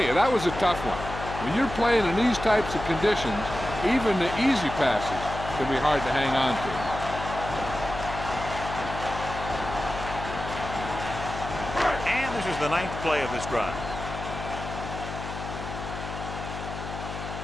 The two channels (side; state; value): left; noise; hum, 8 dB below the sound